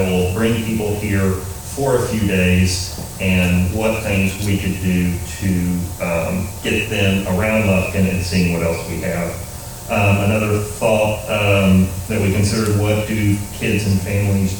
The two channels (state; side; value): identical; both; correlation 1.00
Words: will bring people here for a few days, and what things we could do to get them around Lufkin and seeing what else we have. Another thought that we considered, what do kids and families